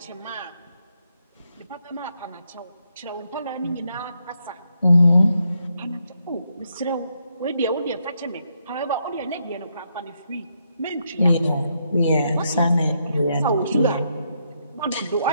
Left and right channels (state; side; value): inverted; both; correlation -0.78